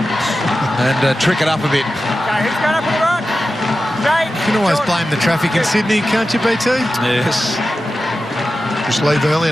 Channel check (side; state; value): both; normal; correlation 0.93